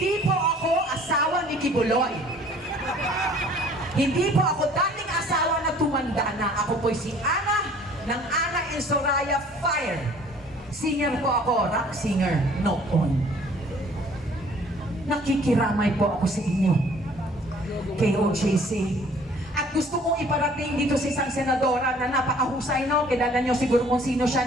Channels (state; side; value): normal; both; correlation 0.54